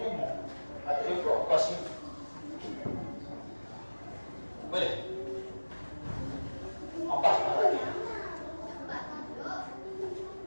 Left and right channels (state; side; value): inverted; both; correlation -1.00